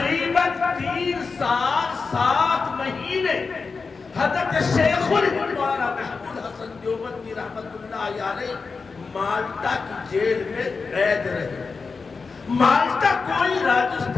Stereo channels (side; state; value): right; quieter; 4.6 dB